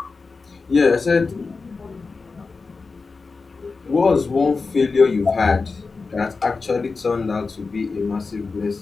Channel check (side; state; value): right; quieter; 4.3 dB